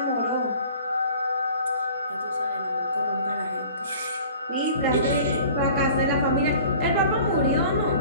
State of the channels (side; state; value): both; inverted; correlation -0.47